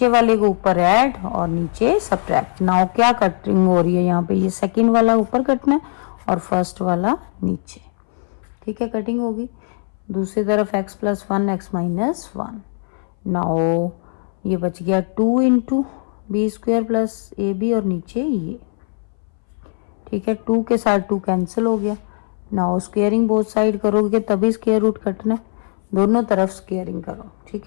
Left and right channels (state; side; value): silent; right; 62 dB below the other